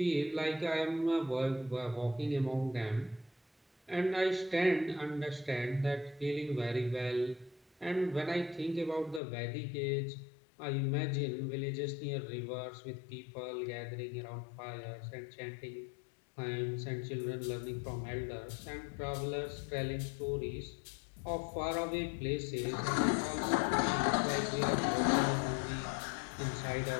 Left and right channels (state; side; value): drops out; right; at 9.2 s